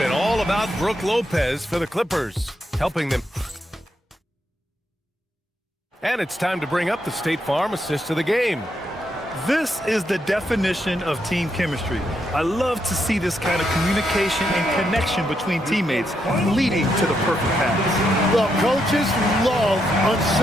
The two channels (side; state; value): both; normal; correlation 0.80